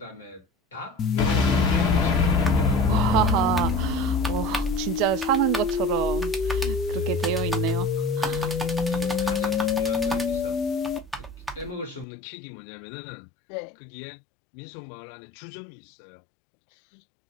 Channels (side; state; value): right; drops out; at 12.1 s